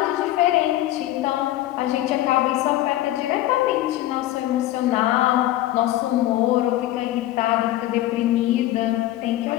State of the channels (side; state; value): right; quieter; 14.8 dB